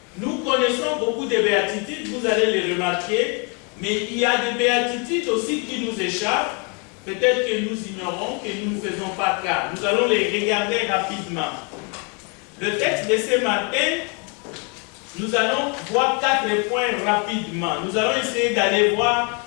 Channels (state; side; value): quieter; right; 34.7 dB